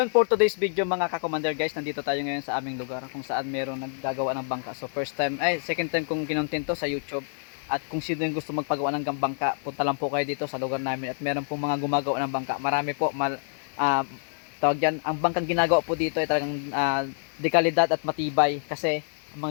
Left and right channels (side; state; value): right; silent; 60 dB below the other